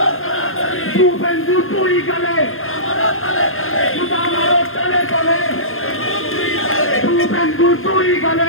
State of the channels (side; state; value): right; late; 0.60 ms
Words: শুভেন্দু তুই গেলে জুতা মারো তলে তলে শুভেন্দু তুই